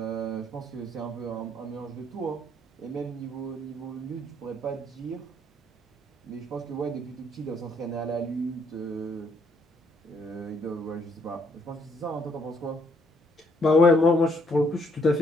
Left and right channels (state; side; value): normal; both; correlation 0.69